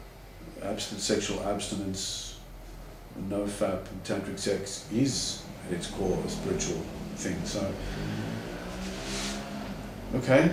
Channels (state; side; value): identical; both; correlation 1.00